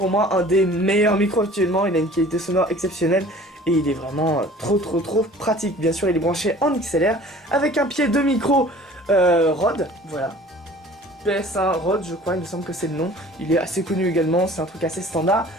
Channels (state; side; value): normal; both; correlation 0.48